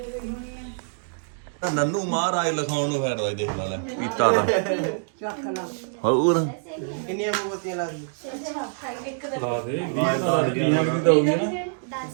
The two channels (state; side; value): silent; left; digital silence